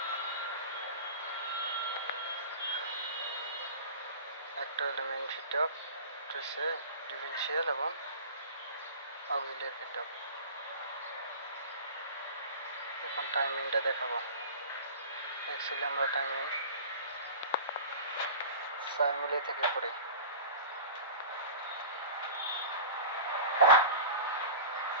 একটা হলো মেন ফিট অফ, হচ্ছে ডিফিশিয়াল এবং অক্সিলিয়ারি ফিট অফ। এখন টাইমিংটা দেখাবো। অ্যাকচুয়ালি আমরা টাইমিং 4 মিলি থেকে করি।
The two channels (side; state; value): both; inverted; correlation -0.35